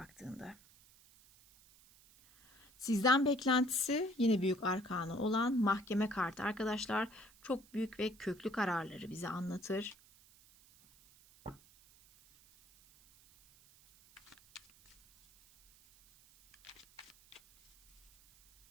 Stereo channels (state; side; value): noise; right; hiss, 26 dB below the sound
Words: Sizden beklentisi yine büyük arkanı olan mahkeme kartı arkadaşlar. Çok büyük ve köklü kararları bize anlatır.